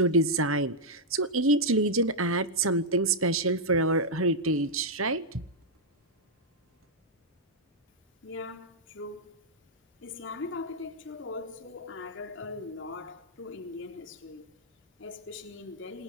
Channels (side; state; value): both; normal; correlation -0.05